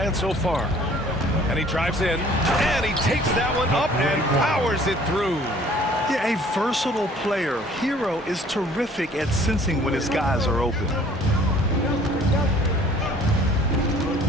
so far. And he drives in, and he takes that one up and powers it through. Yeah, a versatile player. Hero is terrific at sensing when his guys are open.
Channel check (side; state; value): both; normal; correlation 0.54